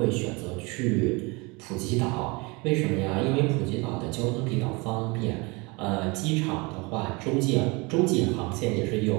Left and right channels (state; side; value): quieter; left; 27.0 dB